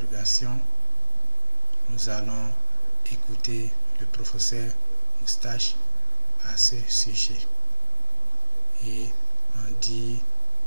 nous allons écouter le professeur Moustache à ce sujet et en dire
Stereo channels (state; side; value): inverted; both; correlation -1.00